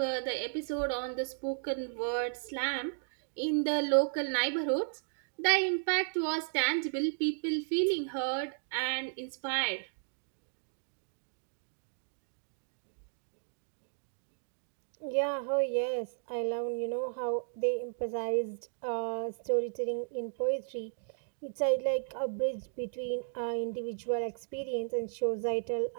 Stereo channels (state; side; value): silent; left; digital silence